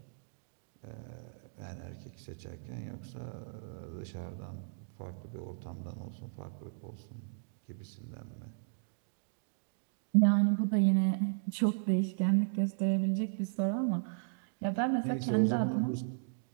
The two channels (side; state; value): left; silent; digital silence